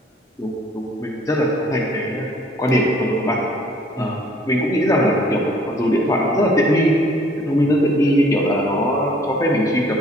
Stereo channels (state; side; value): normal; both; correlation 0.58